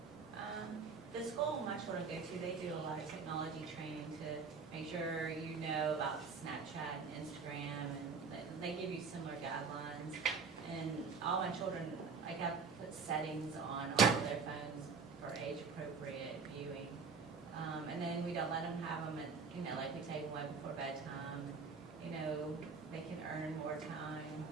The school my children go to, they do a lot of technology training to make sure you know about Snapchat and Instagram, and they give you similar guidelines. And all my children, I got put settings on all of their phones for age-appropriate viewing. And then we don't let them have them at, like we take them way before bedtime. They can earn more time.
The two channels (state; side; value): quieter; left; 5.2 dB